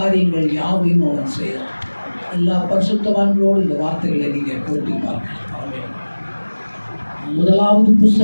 யாவையும் அவன் செய்தான். எல்லா பரிசுத்தவான்களோடு இந்த வார்த்தைகளை நீங்கள் போட்டி பார்க்கலாம். முதலாவது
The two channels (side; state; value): both; inverted; correlation -1.00